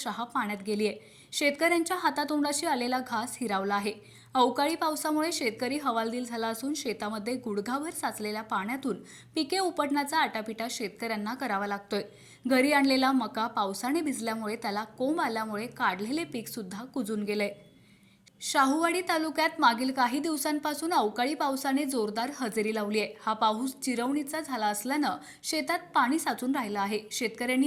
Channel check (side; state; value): both; identical; correlation 1.00